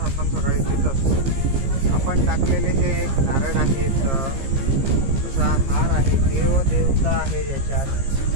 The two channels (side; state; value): left; late; 15 ms